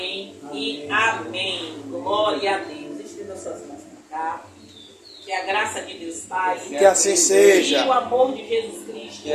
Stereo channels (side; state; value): both; identical; correlation 1.00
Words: e amém. Glória a Deus. Estenda suas mãos para cá. Que a graça de Deus Pai, que assim seja, e o amor de Jesus Cristo, que